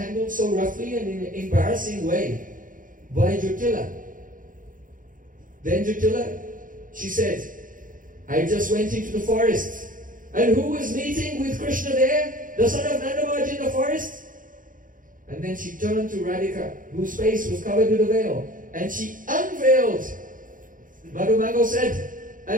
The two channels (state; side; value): late; left; 0.39 ms